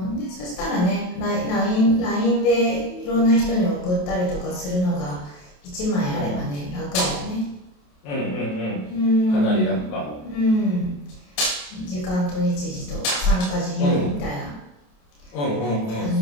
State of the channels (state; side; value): late; right; 27 ms